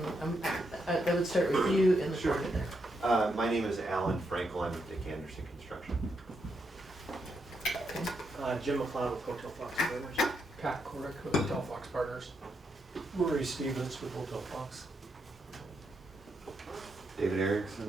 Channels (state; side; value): normal; both; correlation 0.81